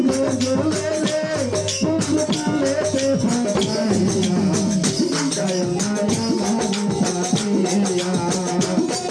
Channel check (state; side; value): identical; both; correlation 1.00